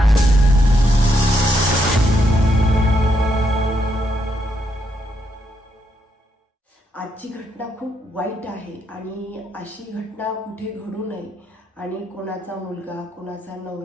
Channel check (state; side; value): normal; both; correlation 0.78